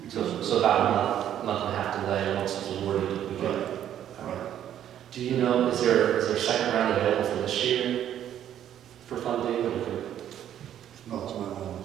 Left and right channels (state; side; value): quieter; left; 10.7 dB